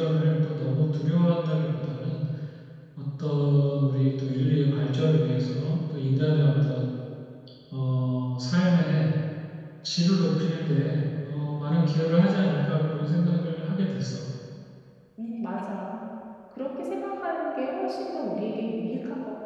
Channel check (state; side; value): identical; both; correlation 1.00